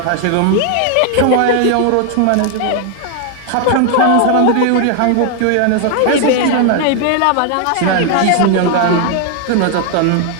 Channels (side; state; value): both; different; correlation 0.00